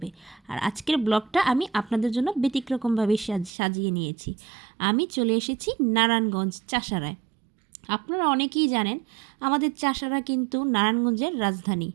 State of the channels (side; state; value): left; drops out; at 3.5 s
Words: আর আজকের ব্লগটা আমি আপনাদের জন্য ব্যতিক্রমভাবে সাজিয়ে নিয়েছি। আমি চলে এসেছি নারায়ণগঞ্জ চাষারায়। আপনারা অনেকেই জানেন আমাদের চাষারা কিন্তু নারায়ণগঞ্জের রাজধানী,